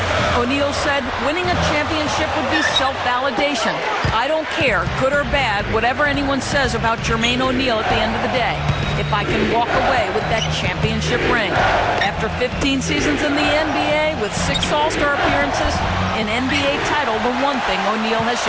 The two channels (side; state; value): both; identical; correlation 1.00